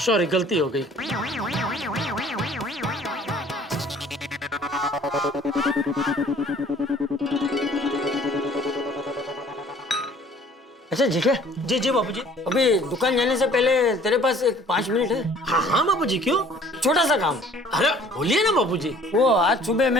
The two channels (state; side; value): normal; both; correlation 0.53